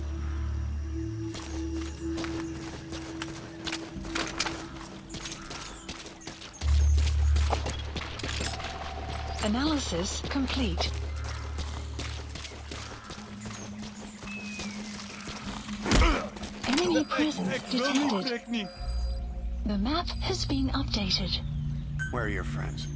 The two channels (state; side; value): identical; both; correlation 1.00